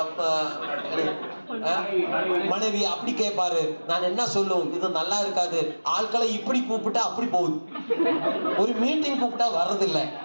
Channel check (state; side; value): inverted; both; correlation -1.00